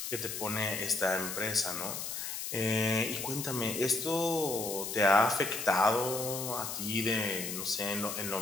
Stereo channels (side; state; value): left; noise; hiss, 5 dB below the sound